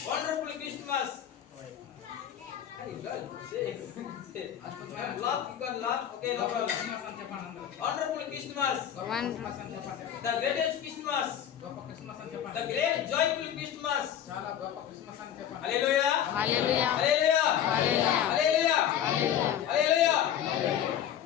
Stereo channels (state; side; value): quieter; right; 10.0 dB